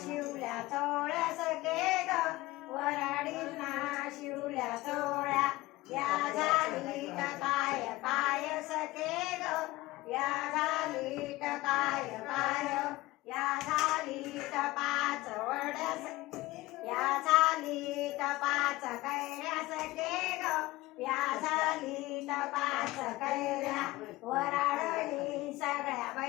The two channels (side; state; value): right; quieter; 19.2 dB